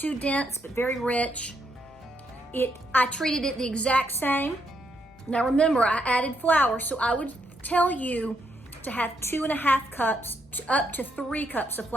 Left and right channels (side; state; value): both; normal; correlation 0.77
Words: dense, but very rich. I treated it the exact same. Now remember, I added flour, so I would tell you to have 2.5 cups up to 3 cups of